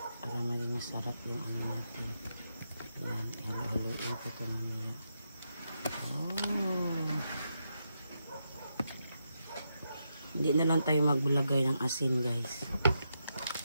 Para maging masarap yung ano natin. Ayan, halo-haloin ko ito mamaya. Oh. Hindi na lang tayo magbulagay ng asin, guys.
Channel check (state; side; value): inverted; both; correlation -0.84